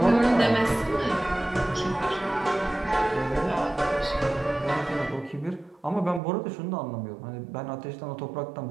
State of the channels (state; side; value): drops out; left; at 6.2 s